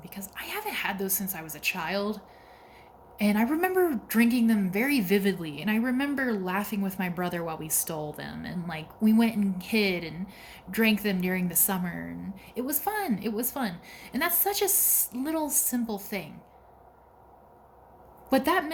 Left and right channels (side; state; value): both; identical; correlation 1.00